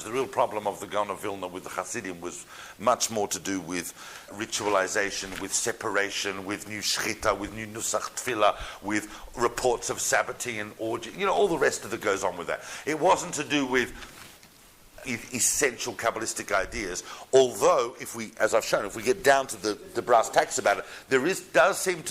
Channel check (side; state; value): both; identical; correlation 1.00